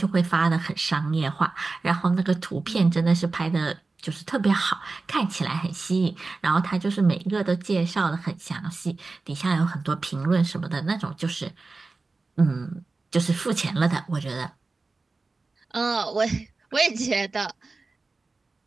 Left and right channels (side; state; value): left; quieter; 3.7 dB